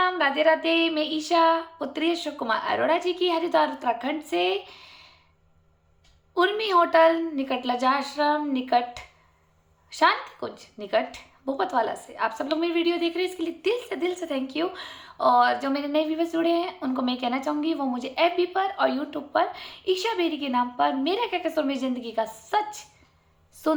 राधे राधे। मैं ईशा, पुत्री अशोक कुमार अरोड़ा जी की हरिद्वार उत्तराखंड से उर्मी होटल निकट लजा आश्रम निकट शांति कुंज निकट भूपतवाला से आप सब लोग मेरी वीडियो देख रहे हैं, इसके लिए दिल से थैंक यू। और जो मेरे नए व्यूवर्स जुड़े हैं उनको मैं कहना चाहूँगी वो मुझे एफबी पर और यूट्यूब पर ईशा बेरी के नाम पर मेरा क्या कसूर मेरी ज़िंदगी का सच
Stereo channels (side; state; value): both; identical; correlation 1.00